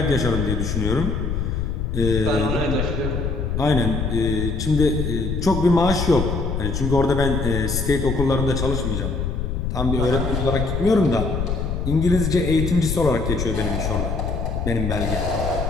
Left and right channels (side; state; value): left; noise; rumble, 2 dB below the sound